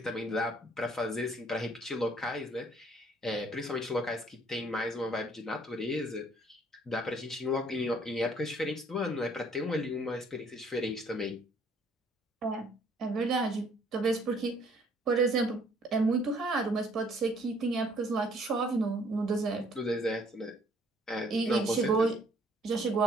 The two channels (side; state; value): both; normal; correlation 0.61